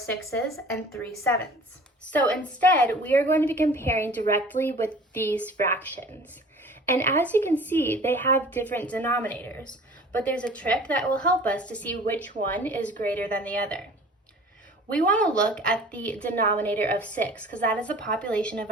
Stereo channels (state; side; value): normal; both; correlation 0.46